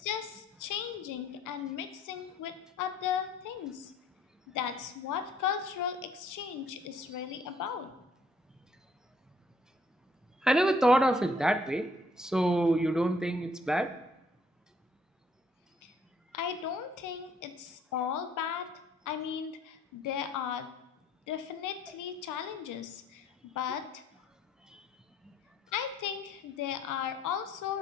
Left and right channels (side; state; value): both; normal; correlation 0.63